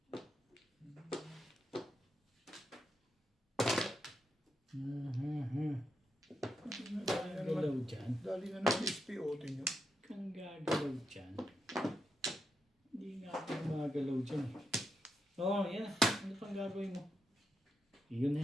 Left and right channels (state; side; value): normal; both; correlation 0.84